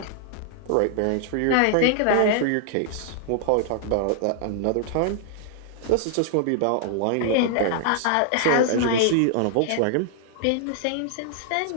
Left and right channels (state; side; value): different; both; correlation 0.00